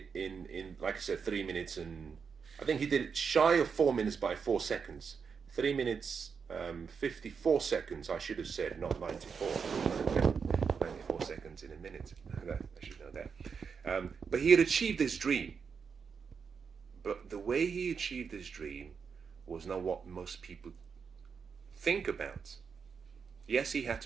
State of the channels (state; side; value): quieter; left; 6.0 dB